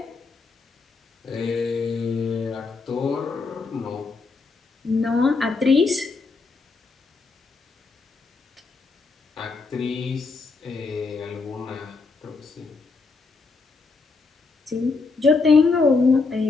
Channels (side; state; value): right; quieter; 4.2 dB